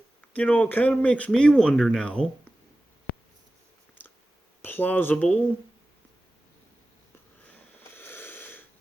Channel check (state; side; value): normal; both; correlation 0.96